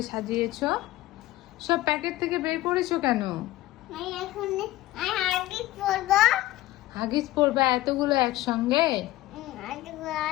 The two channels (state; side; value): quieter; right; 16.3 dB